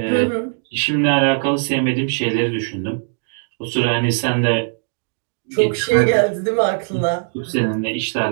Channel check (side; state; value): left; silent; digital silence